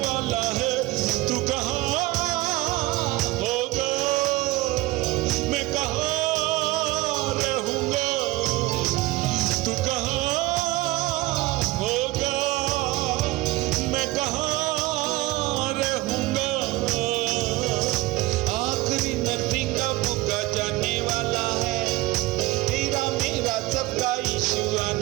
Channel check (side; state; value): left; quieter; 18.8 dB